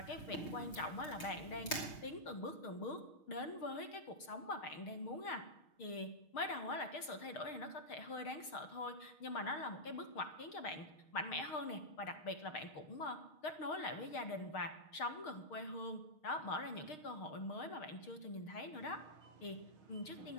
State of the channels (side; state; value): right; late; 6.5 ms